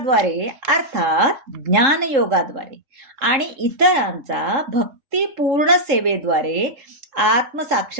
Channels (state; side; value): late; left; 3.7 ms